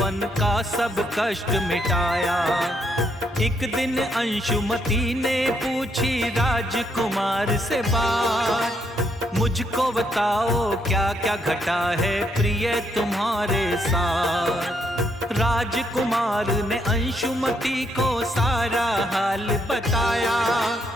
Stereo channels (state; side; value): normal; both; correlation 0.75